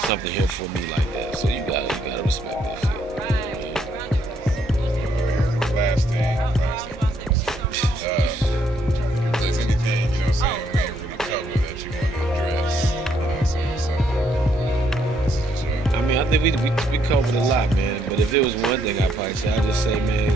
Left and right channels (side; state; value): both; normal; correlation 0.72